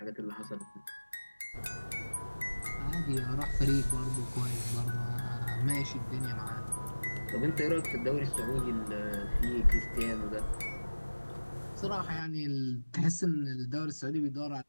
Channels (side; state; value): both; inverted; correlation -1.00